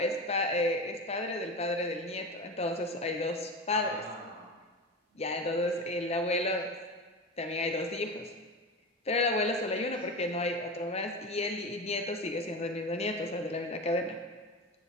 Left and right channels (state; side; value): normal; both; correlation 0.25